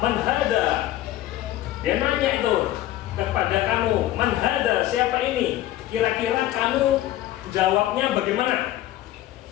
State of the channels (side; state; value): right; quieter; 14.3 dB